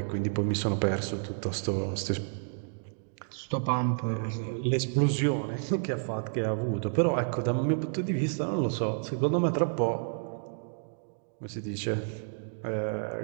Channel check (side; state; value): left; silent; digital silence